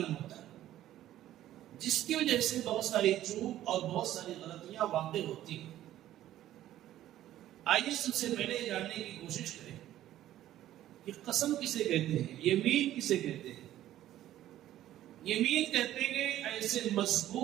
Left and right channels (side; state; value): left; quieter; 13.2 dB